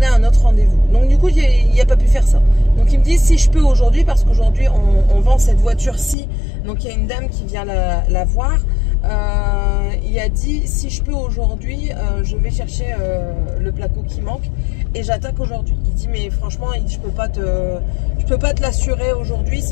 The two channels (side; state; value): right; drops out; at 6.2 s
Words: un autre rendez-vous. Donc, du coup, il n'a pas pu faire ça. Donc, il me dit si je peux aujourd'hui, parce qu'aujourd'hui, on vend cette voiture-ci. Donc, il y a une dame qui vient la voir. Il a dit si je peux aujourd'hui, je vais chercher le placo qui manque et j'attaque aujourd'hui. Il dit mais franchement, je peux pas te l'assurer aujourd'hui,